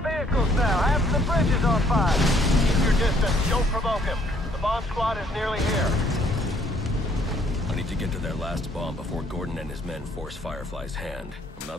vehicles now. Half of the bridge is on fire. Keep your distance. Don't provoke him. The bomb squad is nearly here. I need to get to their last bomb before Gordon and his men force Firefly's hand. I'm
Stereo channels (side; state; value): both; normal; correlation 0.64